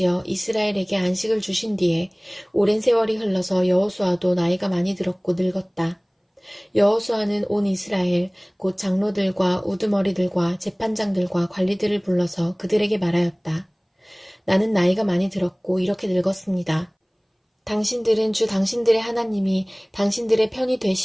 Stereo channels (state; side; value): identical; both; correlation 1.00